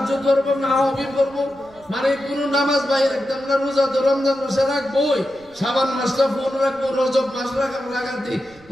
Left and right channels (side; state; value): right; noise; rumble, 27 dB below the sound